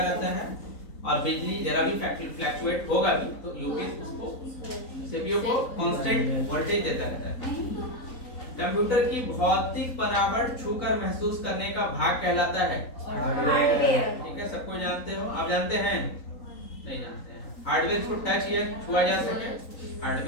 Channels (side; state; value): right; late; 3.9 ms